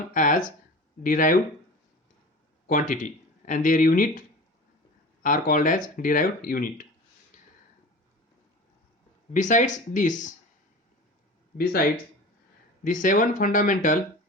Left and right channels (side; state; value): both; normal; correlation 0.36